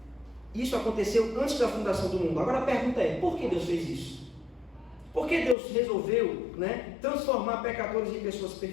Isso aconteceu antes da fundação do mundo. Agora a pergunta é, por que Deus fez isso? Por que Deus resolveu, transformar pecadores em pessoas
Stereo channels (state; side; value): drops out; right; at 5.6 s